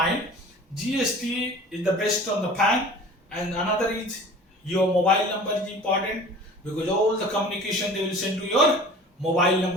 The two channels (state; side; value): normal; both; correlation 0.43